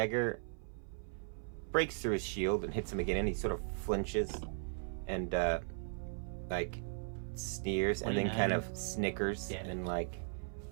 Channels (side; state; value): left; silent; 53 dB below the other